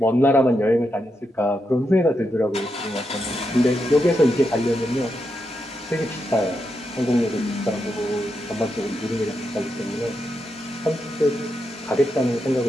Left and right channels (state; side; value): normal; both; correlation 0.85